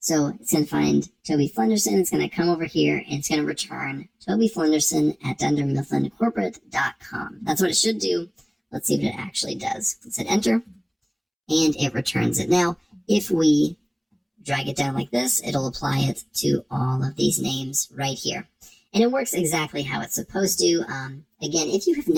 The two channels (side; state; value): both; identical; correlation 1.00